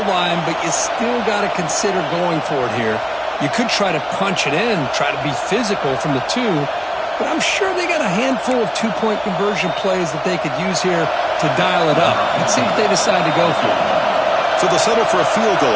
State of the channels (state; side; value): identical; both; correlation 1.00